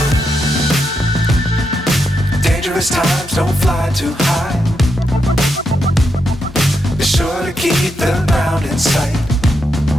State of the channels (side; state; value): both; normal; correlation 0.83